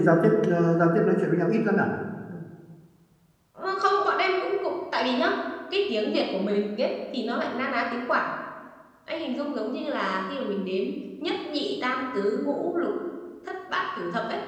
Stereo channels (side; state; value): both; identical; correlation 1.00